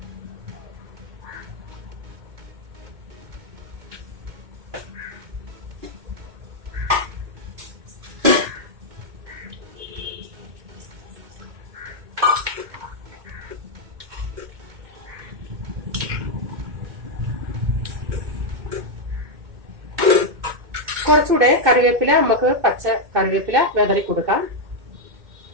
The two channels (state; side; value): late; left; 2.2 ms